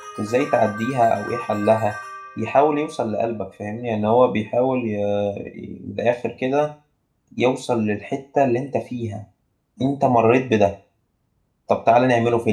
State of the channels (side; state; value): both; identical; correlation 1.00